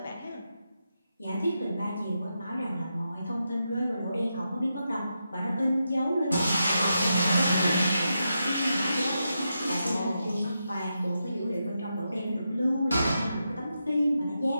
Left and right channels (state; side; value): inverted; both; correlation -0.86